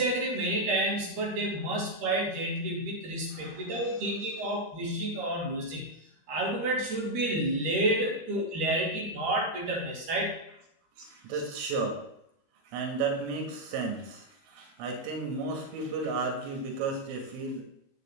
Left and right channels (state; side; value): late; left; 13 ms